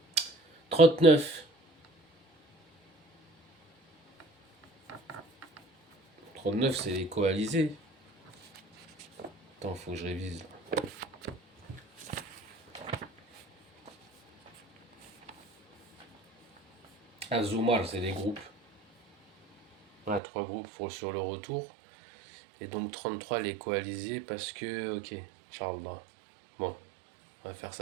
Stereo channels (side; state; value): left; drops out; at 20.2 s